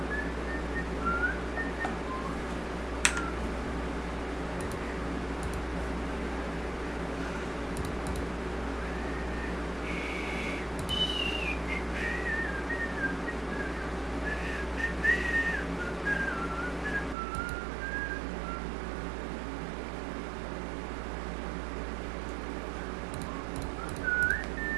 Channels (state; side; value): drops out; left; at 17.2 s